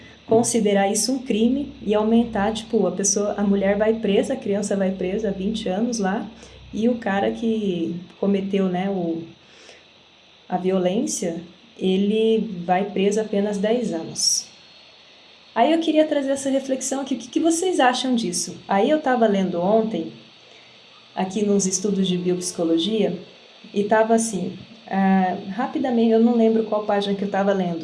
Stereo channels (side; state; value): both; identical; correlation 1.00